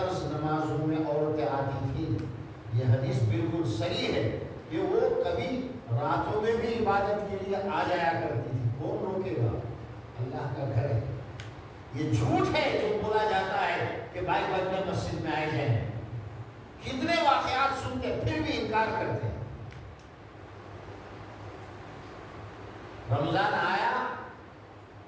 نمازوں میں عورتیں آتی تھیں، یہ حدیث بالکل صحیح ہے کہ وہ کبھی راتوں میں بھی عبادت کے لیے آ جایا کرتی تھی۔ کون روکے گا؟ اللہ کا گھر ہے۔ یہ جھوٹ ہے جو بولا جاتا ہے کہ بھائی بندے مسجد میں آئے جائیں، کتنے واقعات سنتے پھر بھی انکار کرتے ہیں۔ رمضان آیا،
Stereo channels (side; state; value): both; identical; correlation 1.00